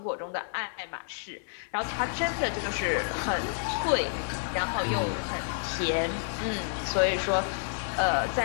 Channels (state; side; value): silent; right; digital silence